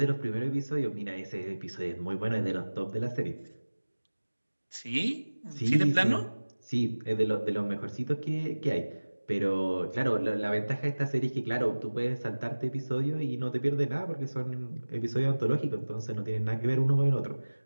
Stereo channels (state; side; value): inverted; both; correlation -1.00